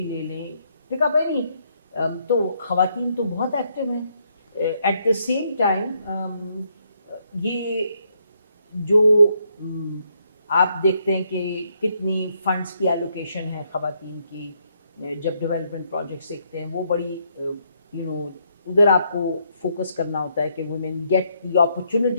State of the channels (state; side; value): inverted; both; correlation -0.74